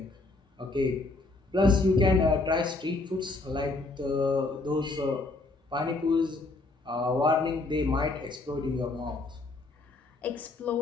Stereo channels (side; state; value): right; quieter; 3.2 dB